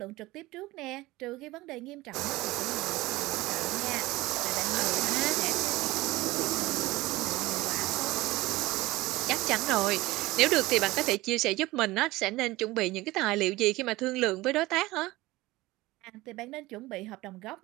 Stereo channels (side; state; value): left; quieter; 19.4 dB